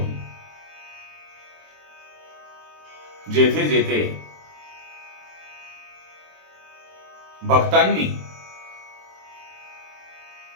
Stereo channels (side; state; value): left; late; 22 ms